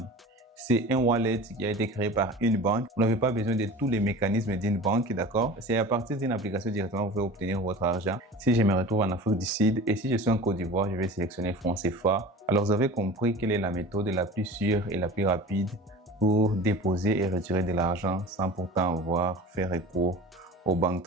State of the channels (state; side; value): normal; both; correlation 0.37